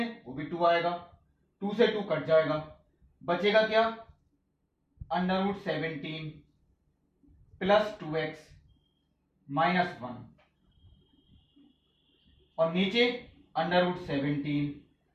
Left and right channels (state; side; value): identical; both; correlation 1.00